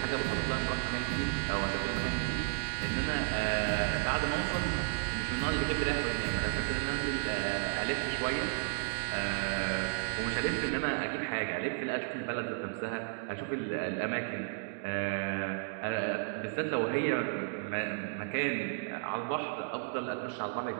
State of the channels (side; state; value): left; silent; digital silence